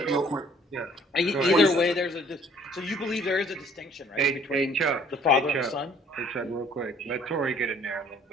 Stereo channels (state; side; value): normal; both; correlation 0.57